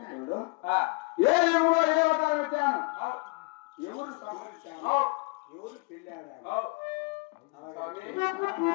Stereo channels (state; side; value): quieter; right; 28.8 dB